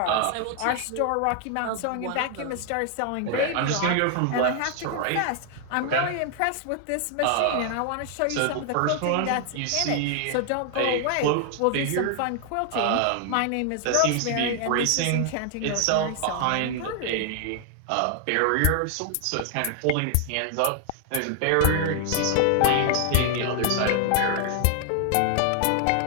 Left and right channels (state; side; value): different; both; correlation 0.00